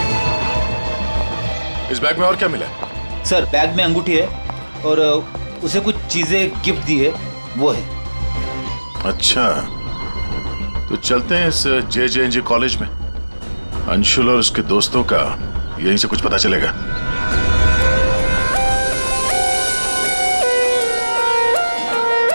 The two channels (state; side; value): inverted; both; correlation -1.00